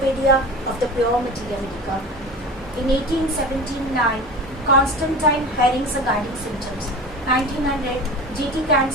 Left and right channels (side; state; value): both; normal; correlation 0.34